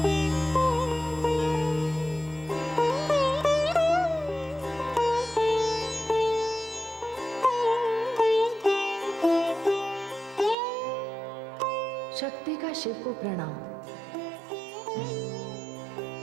शक्ति का शिव को प्रणाम।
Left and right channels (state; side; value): drops out; left; at 10.6 s